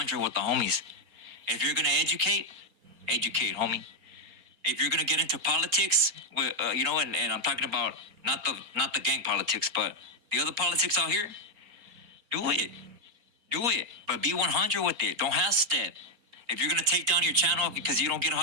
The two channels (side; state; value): left; late; 4.3 ms